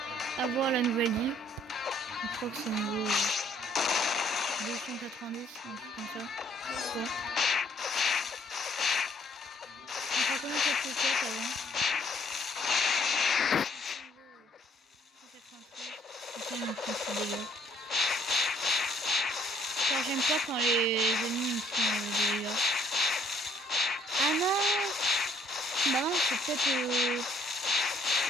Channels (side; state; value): both; normal; correlation 0.64